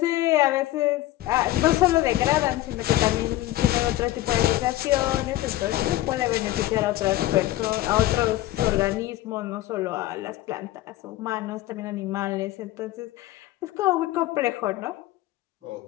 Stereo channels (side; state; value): right; quieter; 15.8 dB